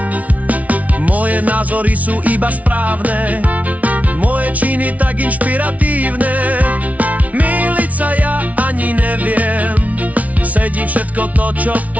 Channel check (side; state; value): left; late; 0.069 ms